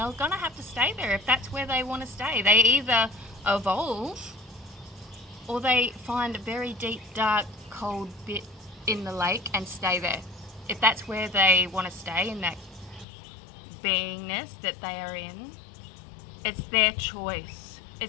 gonna have to stay there if that's where they want to stay. They either evolve or they find a very deep, dark, cold bit in the lake and stay there. If that's where they want to stay, in that beingness that they are in, it's their choice.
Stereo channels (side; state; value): right; drops out; at 13.1 s